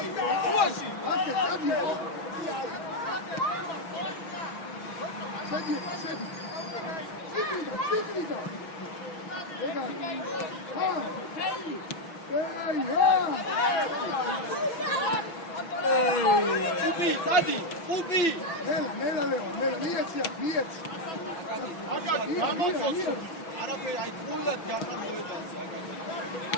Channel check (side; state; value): right; late; 6.0 ms